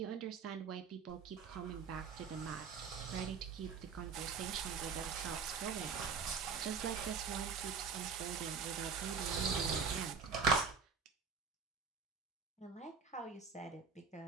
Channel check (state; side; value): quieter; left; 5.5 dB